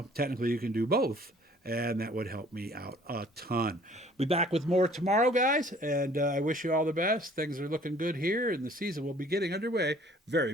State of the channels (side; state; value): both; normal; correlation 0.55